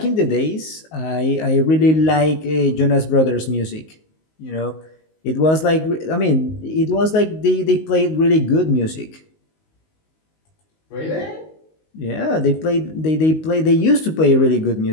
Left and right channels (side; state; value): right; late; 19 ms